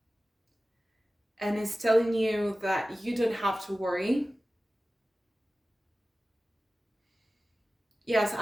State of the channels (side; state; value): both; normal; correlation 0.96